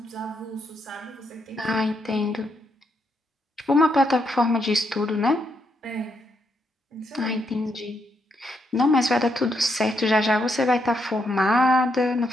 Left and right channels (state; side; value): normal; both; correlation 0.78